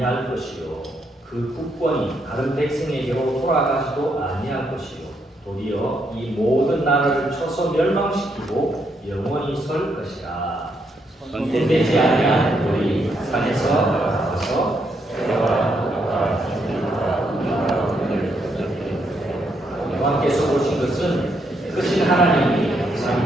것이요 그 국권이 다른 백성에게로 돌아가지도 아니할 것이요 도리어 이 모든 나라를 쳐서 멸망시키고 영원히 설 것이라. 선택되지 아니한 돌이 산에서 나와서 여호와께서 보신 것은 크신 하나님이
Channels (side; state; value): both; normal; correlation 0.77